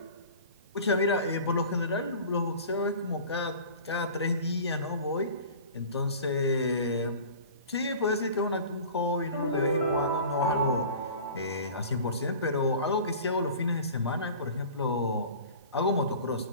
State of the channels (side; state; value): both; inverted; correlation -0.40